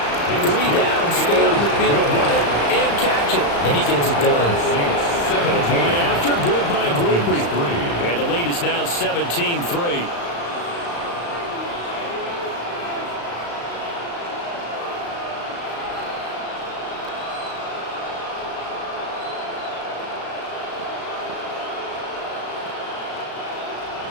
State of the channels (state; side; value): late; right; 35 ms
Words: 3 down, stay on the field, run it, and catch it. And he gets it done. The point after, good by Groupie. And the lead is now 17-3.